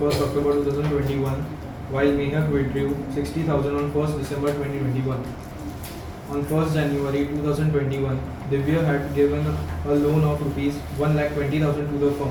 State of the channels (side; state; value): both; identical; correlation 1.00